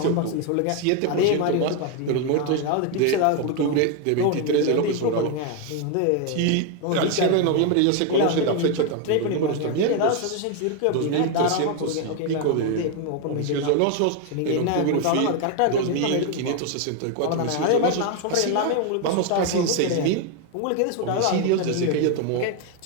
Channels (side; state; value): both; different; correlation 0.01